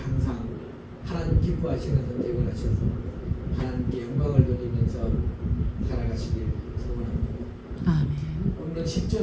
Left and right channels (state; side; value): identical; both; correlation 1.00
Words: 하나님 기뻐하시는 선택을 하셔서 하나님께 영광을 돌리면서 살아가시길 소원합니다. 아멘. 오늘